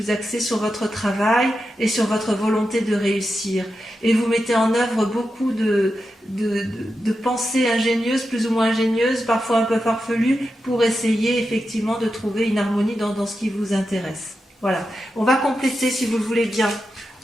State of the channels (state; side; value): normal; both; correlation 0.89